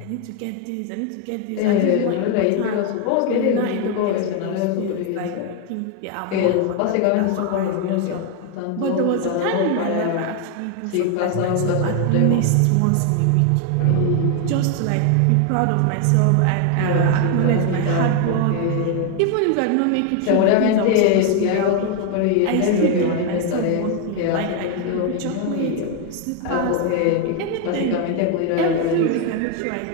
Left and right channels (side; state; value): both; different; correlation 0.01